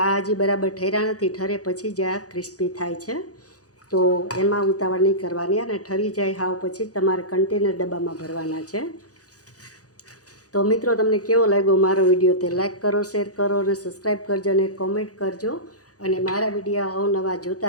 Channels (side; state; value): right; late; 0.67 ms